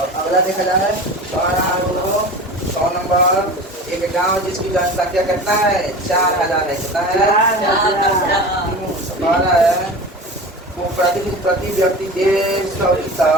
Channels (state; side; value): normal; both; correlation 0.33